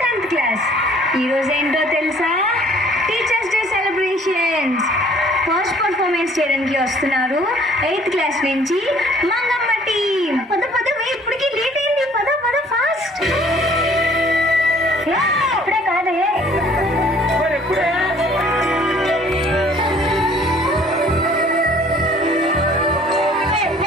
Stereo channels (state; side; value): normal; both; correlation 0.56